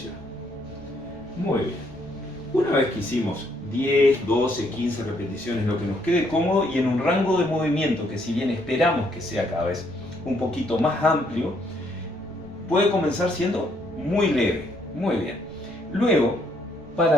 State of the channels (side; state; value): right; noise; rumble, 20 dB below the sound